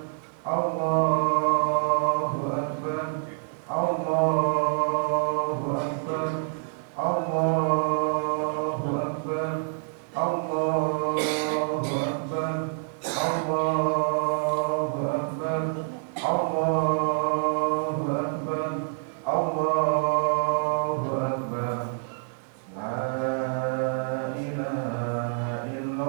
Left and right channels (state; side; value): silent; left; 56 dB below the other